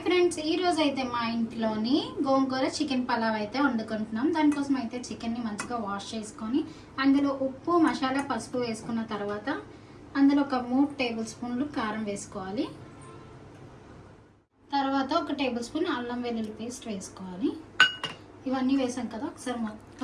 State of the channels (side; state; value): both; identical; correlation 1.00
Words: friends, ఈ రోజు అయితే మా ఇంట్లోని గోంగూర చికెన్ పలావ్ అయితే వండుకుంటున్నాం. దానికోసం అయితే చికెన్ని మంచిగా వాష్ చేసుకొని అందులో ఉప్పు, మసాలా, పసుపు వేసుకున్న తర్వాత అందులో ఒక 3 టేబుల్ స్పూన్లు కారం వేసుకోవాలి. తర్వాత ఒక టేబుల్ స్పూన్ అల్లం వెల్లుల్లి పేస్ట్ వేసుకోవాలి. ఇవన్నీ వేసాం కదా, ఒకసారి